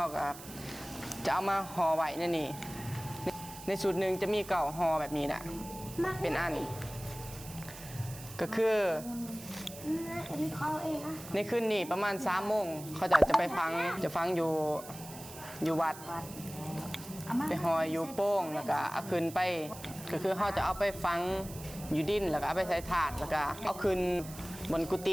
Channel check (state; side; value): noise; right; hiss, 15 dB below the sound